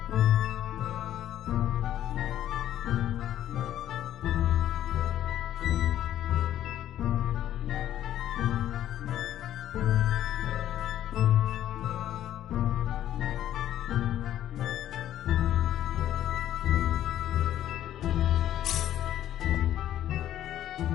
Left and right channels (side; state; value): right; quieter; 11.9 dB